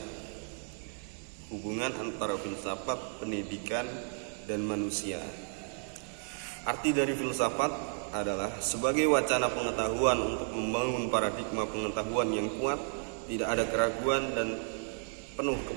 Hubungan antara filsafat, pendidikan, dan manusia. Arti dari filsafat adalah sebagai wacana pengetahuan untuk membangun paradigma pengetahuan yang kuat, tidak ada keraguan dan penuh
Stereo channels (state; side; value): silent; left; 56 dB below the other